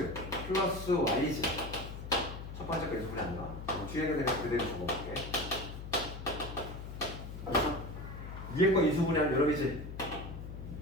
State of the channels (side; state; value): left; noise; hum, 9 dB below the sound